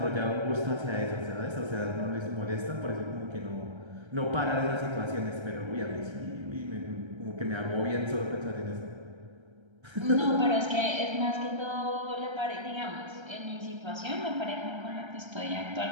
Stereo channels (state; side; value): late; left; 1.3 ms